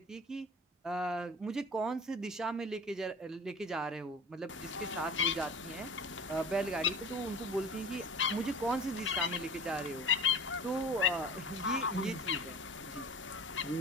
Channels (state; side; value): normal; both; correlation 0.37